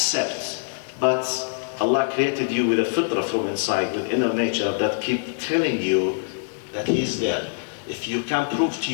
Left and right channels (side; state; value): right; silent; digital silence